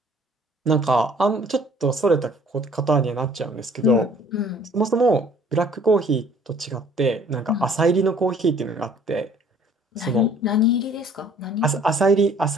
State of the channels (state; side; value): normal; both; correlation 0.56